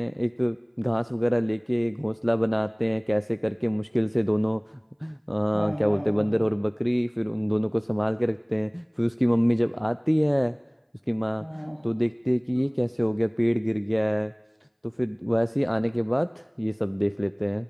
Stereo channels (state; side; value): identical; both; correlation 1.00